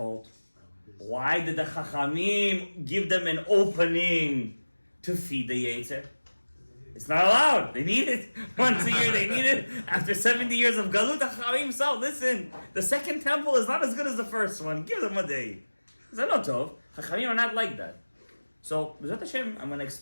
Why did the Chachamim give them an opening to feed the Yetzer? It's not allowed. They need it. Once a year they need it. After 70 years of Galut, the Chachamim said, listen, the second temple is not as good as the first one. Give them a day. Tov. Chachamim are not like that. So, B'ezrat Hashem, I'm going to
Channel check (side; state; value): both; inverted; correlation -1.00